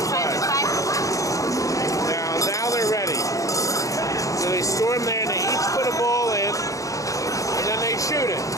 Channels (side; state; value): right; late; 0.16 ms